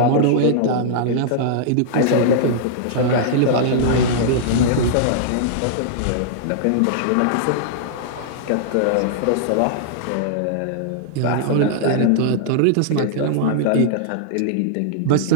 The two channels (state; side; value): different; both; correlation -0.01